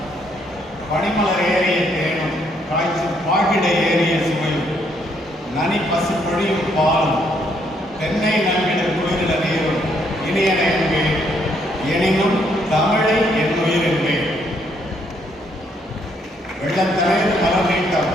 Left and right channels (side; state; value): both; normal; correlation 0.71